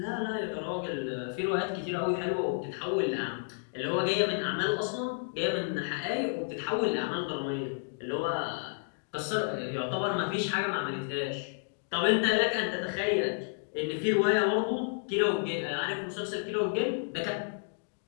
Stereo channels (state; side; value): silent; right; digital silence